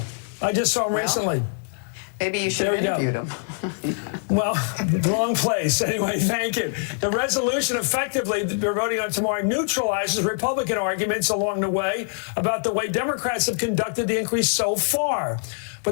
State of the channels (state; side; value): silent; right; digital silence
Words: I just saw him recently. Maybe you should have interviewed him. Well, wrong place. Anyway, thank you. The resolution effectively that we're voting on tomorrow neutralizes Republican arguments along the way about the way Democrats have conducted the inquiry so far.